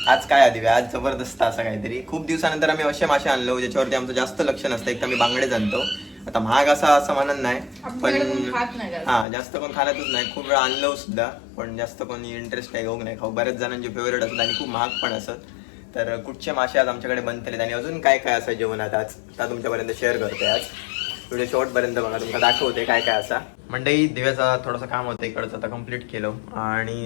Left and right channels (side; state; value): right; drops out; at 9.2 s